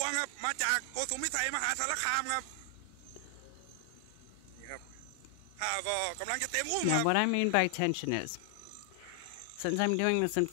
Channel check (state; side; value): different; both; correlation 0.00